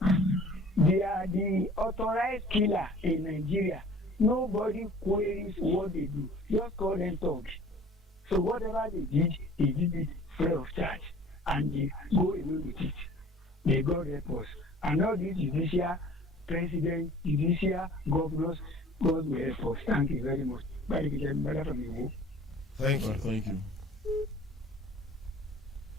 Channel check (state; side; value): normal; both; correlation 0.48